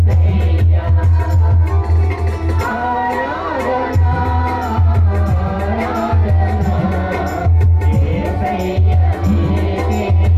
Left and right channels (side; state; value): both; identical; correlation 1.00